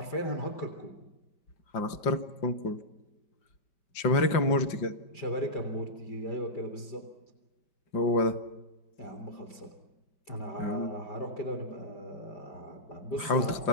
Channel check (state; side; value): late; right; 5.2 ms